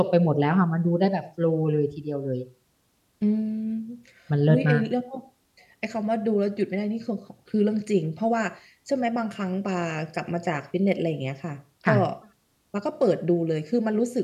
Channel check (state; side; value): identical; both; correlation 1.00